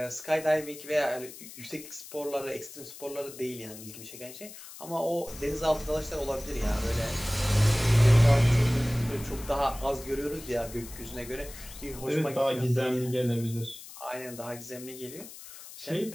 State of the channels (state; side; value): noise; left; hiss, 15 dB below the sound